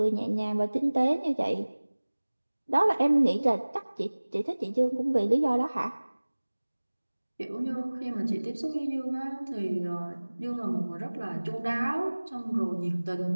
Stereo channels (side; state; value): both; inverted; correlation -1.00